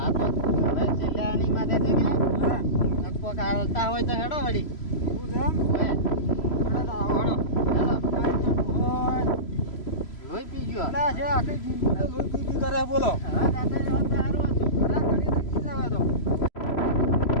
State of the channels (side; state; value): right; late; 3.0 ms